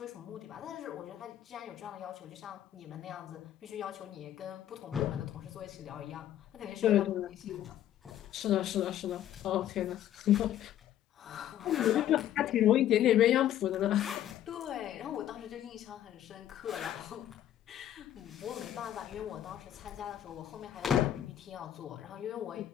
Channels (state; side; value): quieter; right; 11.7 dB